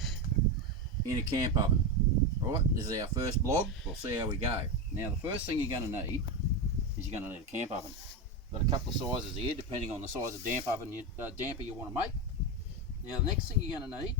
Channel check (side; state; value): both; normal; correlation 0.15